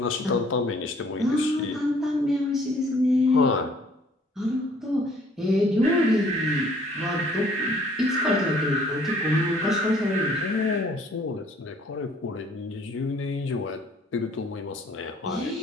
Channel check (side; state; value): both; normal; correlation 0.59